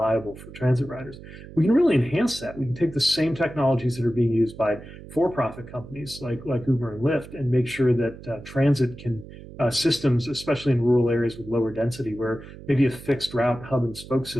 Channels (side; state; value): right; noise; hum, 16 dB below the sound